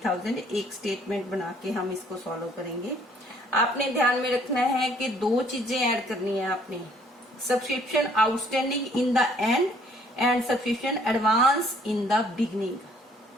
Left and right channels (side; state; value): both; normal; correlation 0.61